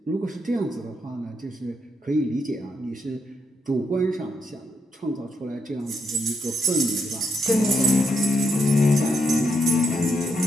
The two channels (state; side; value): normal; both; correlation 0.78